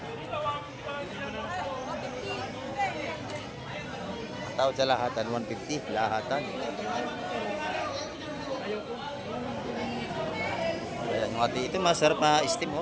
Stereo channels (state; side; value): identical; both; correlation 1.00